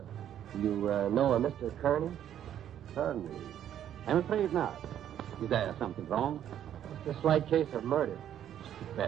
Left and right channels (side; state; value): left; quieter; 10.5 dB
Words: You know a Mr. Kearney? Kearney? I'm afraid not. Is there something wrong? Just a slight case of murder.